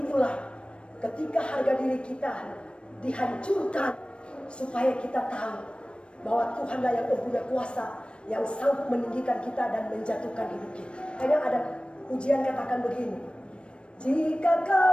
itulah ketika harga diri kita dihancurkan, supaya kita tahu bahwa Tuhanlah yang mempunyai kuasa, yang sanggup meninggikan kita dan menjatuhkan hidup kita. Hanya ada ujian katakan begini: jika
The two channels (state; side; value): late; right; 0.058 ms